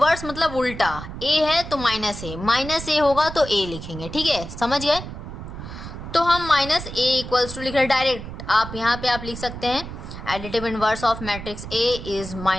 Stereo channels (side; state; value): right; noise; rumble, 10 dB below the sound